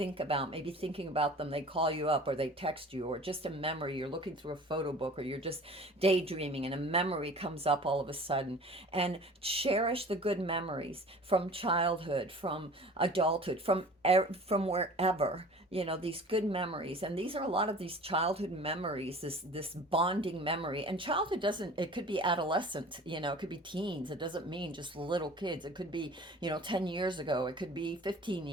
about, maybe thinking about them, they call you up or they text you, or just a memory, you're looking through a photo book, or you're just daydreaming and a memory comes up all of a sudden. And cherish the good memories from childhood, from adulthood, from wherever, these good memories. And these are a lot of these childhood memories, this bonding memory. And childhood doesn't, it could be adolescent, it could be teens. It doesn't mean just little kids. It could be 10 years ago, it could be 15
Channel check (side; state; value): both; normal; correlation 0.44